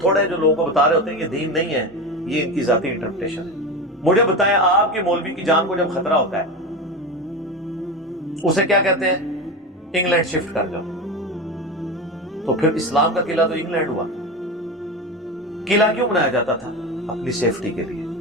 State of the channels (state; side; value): normal; both; correlation 0.23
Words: تھوڑے ہیں جو لوگوں کو بتا رہے ہوتے ہیں یہ دین نہیں ہے, یہ ان کی ذاتی انٹرپریٹیشن ہے. مجھے بتائیں آپ کے مولوی کی جان کو جب خطرہ ہوتا ہے اسے کیا کہتے ہیں؟ انگلینڈ شفٹ کر جاؤ. تو پھر اسلام کا قلعہ تو انگلینڈ ہوا. قلعہ کیوں بنایا جاتا تھا؟ اپنی سیفٹی کے لیے.